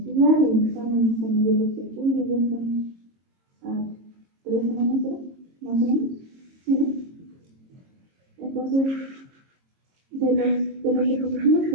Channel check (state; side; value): late; left; 22 ms